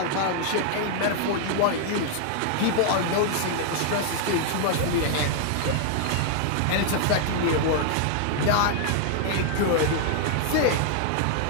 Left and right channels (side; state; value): both; different; correlation 0.00